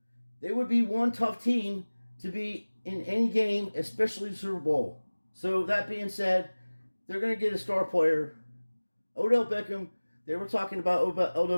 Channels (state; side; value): inverted; both; correlation -1.00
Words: they would be one tough team to be in any game, especially the Super Bowl. So that being said, they're going to get a star player. Odell Beckham, they were talking about